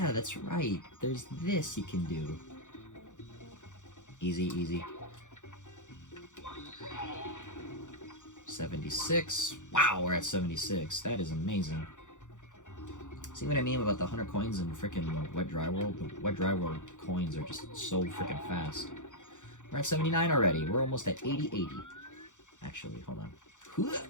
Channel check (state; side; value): late; right; 0.85 ms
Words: that's right, there's this you can do. Easy, easy. 76. Wow, we're at 76. That is amazing. See what I mean about the 100 coins in frickin' Wet Dry World? The Wet Dry World coins are just so frickin' fast. We're at 79 already. We're almost at 80. Actually, hold on.